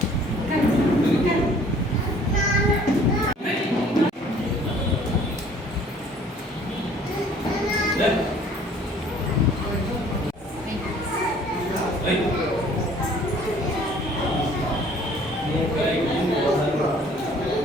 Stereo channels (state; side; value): normal; both; correlation 0.54